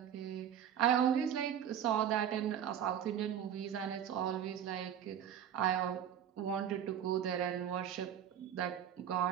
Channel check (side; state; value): left; quieter; 9.4 dB